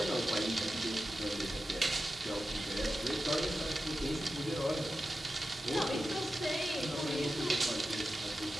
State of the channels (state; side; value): normal; both; correlation 0.92